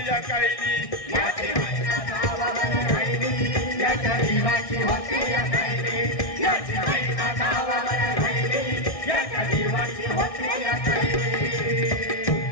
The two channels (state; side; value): late; right; 1.6 ms